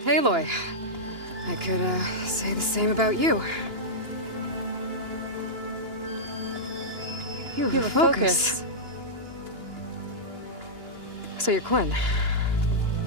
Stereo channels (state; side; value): late; left; 2.9 ms